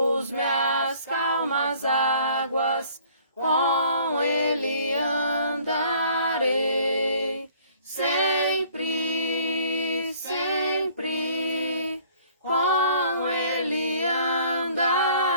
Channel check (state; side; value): inverted; both; correlation -0.56